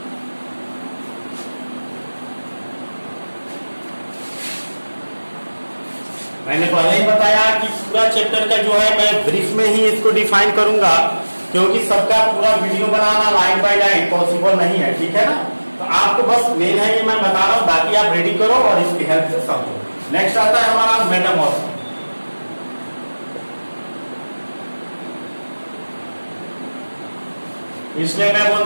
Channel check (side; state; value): both; inverted; correlation -1.00